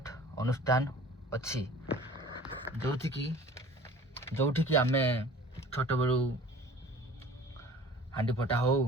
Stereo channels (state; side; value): normal; both; correlation 0.46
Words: अनुष्ठान अच्छी जोठी की आमे छोट बेलू हांडी फटा